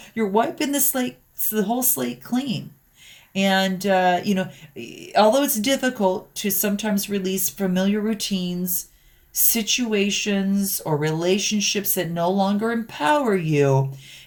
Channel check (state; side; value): identical; both; correlation 1.00